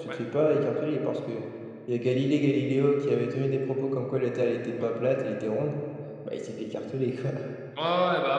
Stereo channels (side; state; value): both; identical; correlation 1.00